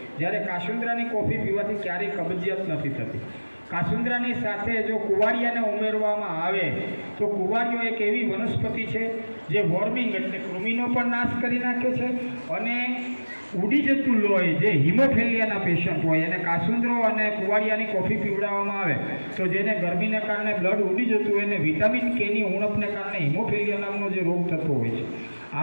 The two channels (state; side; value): inverted; both; correlation -1.00